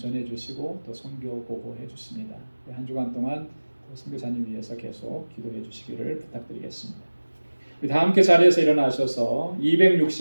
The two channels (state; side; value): inverted; both; correlation -1.00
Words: 또 선교 보고해 주십니다. 한 주간 동안 선교사님 위해서 계속 기도해 주시기를 부탁드리겠습니다. 우리 다 함께 자리에서 일어나셔서